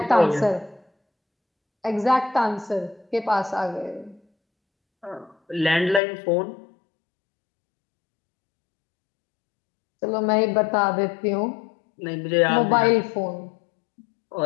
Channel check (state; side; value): drops out; right; at 6.0 s